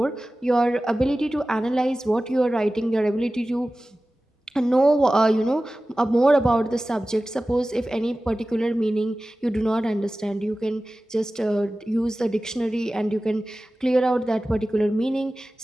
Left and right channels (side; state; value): both; normal; correlation 0.96